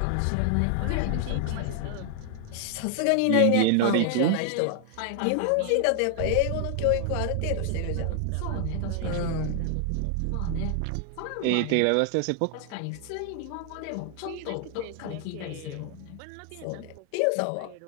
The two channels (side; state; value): both; different; correlation 0.00